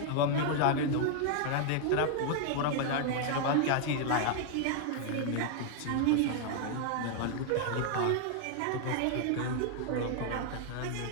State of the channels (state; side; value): different; both; correlation 0.00